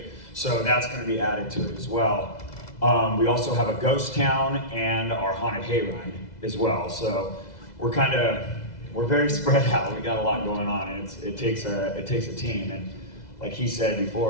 So that's going to be added to it as well. We also have a ghost town and our haunted hayride as well. So we're very spread out. We got a lot going on, and it takes a team. And like he said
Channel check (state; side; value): late; right; 2.0 ms